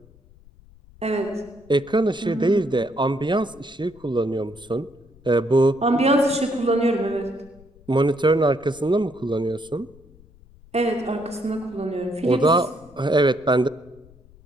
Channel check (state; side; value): noise; left; rumble, 26 dB below the sound